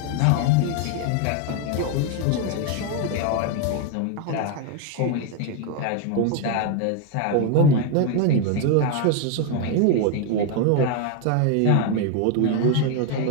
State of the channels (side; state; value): both; different; correlation 0.01